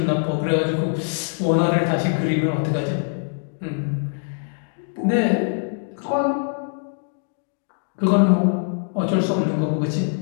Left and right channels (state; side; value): silent; right; 64 dB below the other